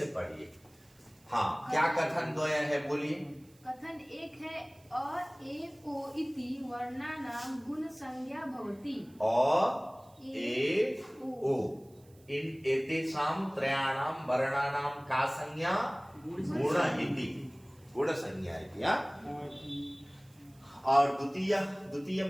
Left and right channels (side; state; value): right; noise; hiss, 30 dB below the sound